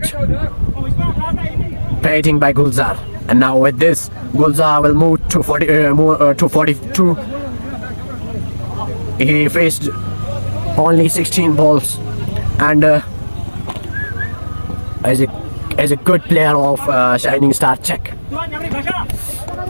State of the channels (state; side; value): inverted; both; correlation -1.00